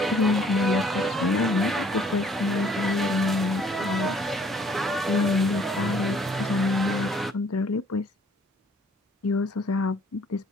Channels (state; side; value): normal; both; correlation 0.59